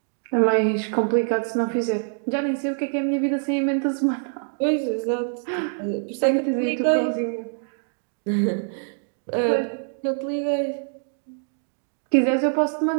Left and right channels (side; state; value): left; silent; digital silence